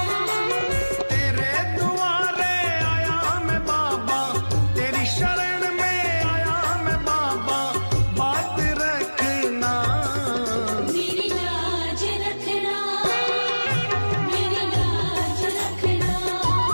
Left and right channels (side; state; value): both; inverted; correlation -1.00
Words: तेरे दुआरे आया मैं बाबा, तेरी शरण में आया मैं बाबा, बात रखना। मेरी लाज रखना, मेरी लाज रखना।